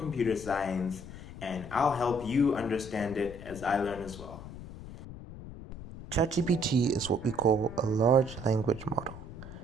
science, and I'll help you understand it as I learn as well. Chat-GPT is what we call a large language model.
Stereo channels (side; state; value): left; noise; rumble, 12 dB below the sound